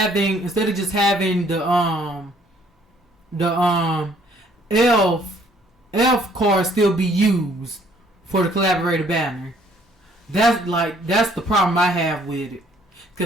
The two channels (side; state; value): both; normal; correlation 0.62